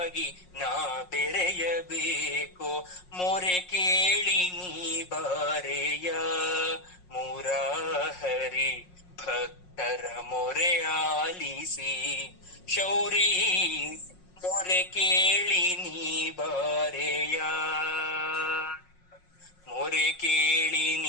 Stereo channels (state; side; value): late; right; 5.5 ms